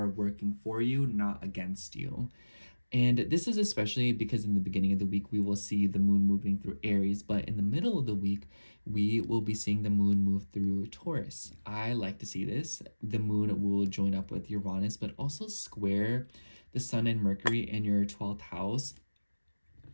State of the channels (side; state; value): both; inverted; correlation -1.00